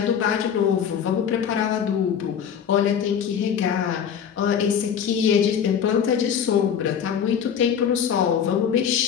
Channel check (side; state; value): right; quieter; 8.0 dB